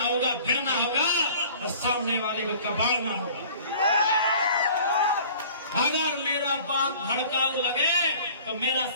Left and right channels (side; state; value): both; inverted; correlation -0.48